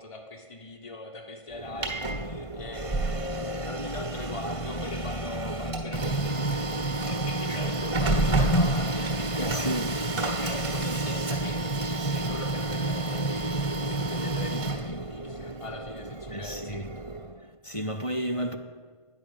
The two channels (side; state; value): right; late; 1.5 ms